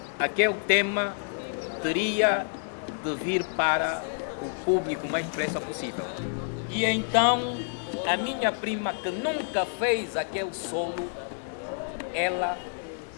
aquele tema teria de vir para o público o mais depressa possível. E então, a minha prima, que nunca fez aquele solo, ela,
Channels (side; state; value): right; silent; digital silence